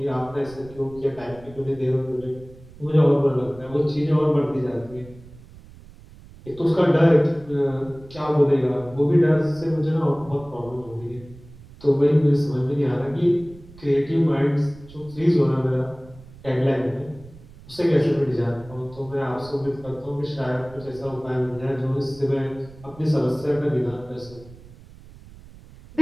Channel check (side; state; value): right; noise; rumble, 20 dB below the sound